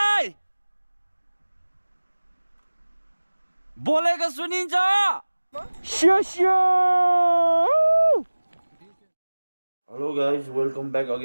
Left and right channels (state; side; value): inverted; both; correlation -1.00